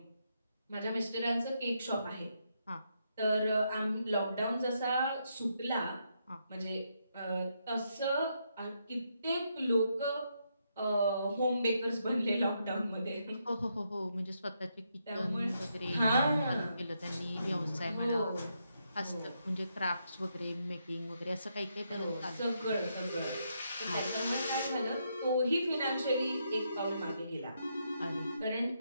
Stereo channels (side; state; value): both; inverted; correlation -0.79